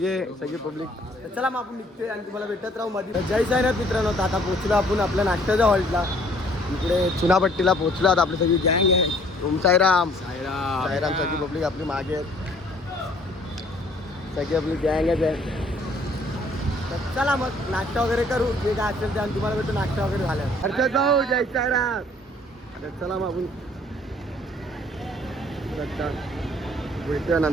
पब्लिक. चला मग आपण निघतोय आणि तुम्हाला भेटत राहू मध्ये. जय साईनाथ मित्रांनो. आता पोहोचलो आपण आपल्या नाश्त्याच्या हॉल्टला. इकडे चुनापट्टीला पोहोचलो. आता आपली सगळी गँग आहे. ओम साईराम. साईराम सगळी पब्लिक आपली मागे आहेत. सगळी आपली गँगच आहे. तर चला मग नाश्ता वगैरे करू, जे काय असेल ते. आणि तुम्हाला भेटू नाश्ता वगैरे झालं. हर्षद भाऊ जय साईराम. तर चला मग आपण भेटूया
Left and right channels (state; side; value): normal; both; correlation 0.59